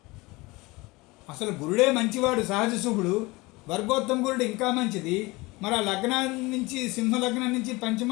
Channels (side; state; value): right; quieter; 22.8 dB